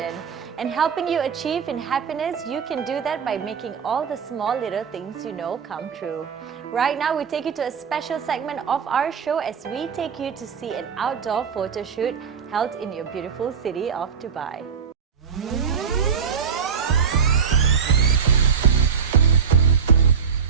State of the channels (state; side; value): quieter; left; 6.9 dB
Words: And helping you achieve in happiness, you can do that by making all the small little things you know come true. Right now, we take you to a special segment of our show as we take you to see an outdoor photo shoot held in your beautiful city of Dubai.